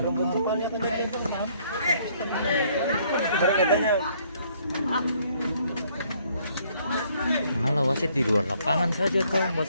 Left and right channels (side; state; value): both; inverted; correlation -0.65